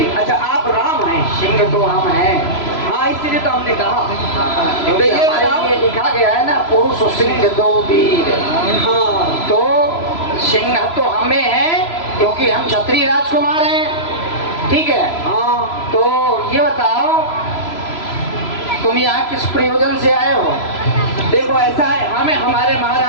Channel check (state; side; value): late; right; 3.0 ms